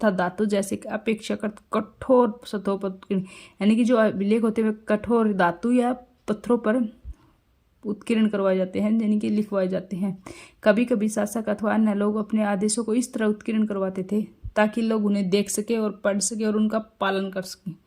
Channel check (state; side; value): identical; both; correlation 1.00